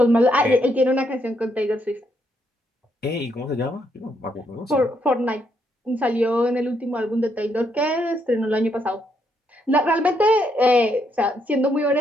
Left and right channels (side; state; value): both; normal; correlation 0.75